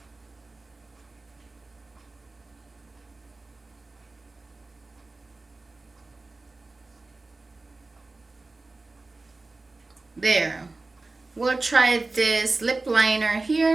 There. We'll try this lip liner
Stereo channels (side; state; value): left; quieter; 3.3 dB